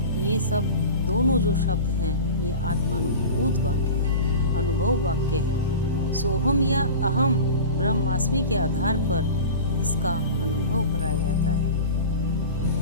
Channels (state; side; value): inverted; both; correlation -0.33